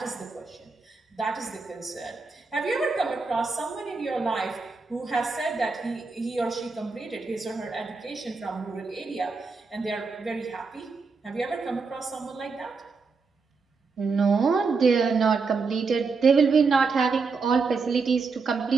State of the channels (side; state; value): left; quieter; 4.6 dB